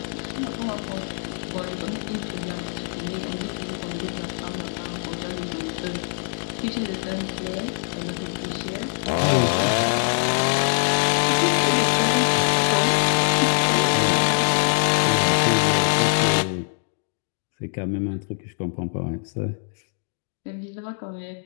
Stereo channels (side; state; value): right; silent; digital silence